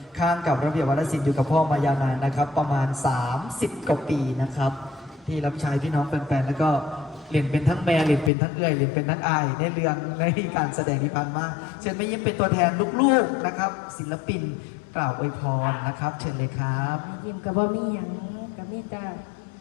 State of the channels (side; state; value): right; drops out; at 8.3 s